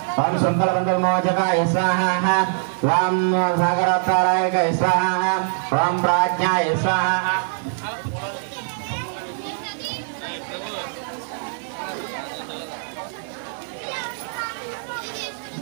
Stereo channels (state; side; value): silent; left; 60 dB below the other